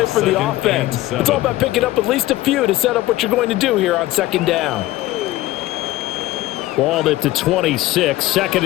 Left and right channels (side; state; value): right; quieter; 16.5 dB